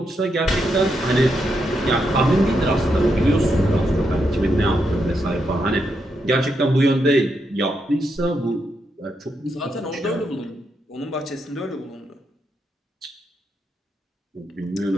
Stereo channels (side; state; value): both; normal; correlation 0.81